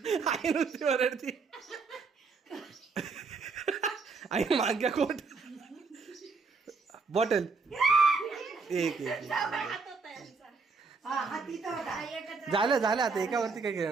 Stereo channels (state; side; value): quieter; left; 4.6 dB